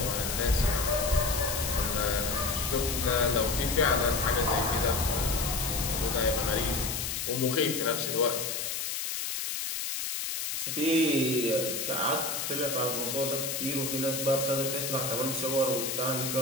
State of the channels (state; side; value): noise; left; hiss, 3 dB below the sound